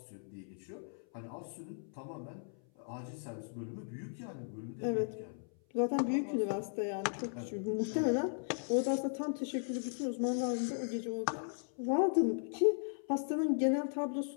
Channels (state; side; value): silent; right; 53 dB below the other